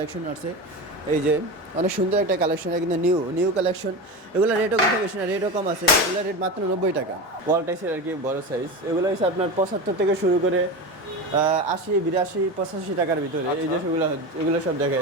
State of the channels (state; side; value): normal; both; correlation 0.24